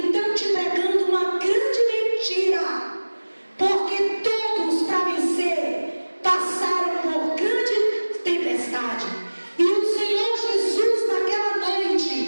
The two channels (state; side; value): inverted; both; correlation -1.00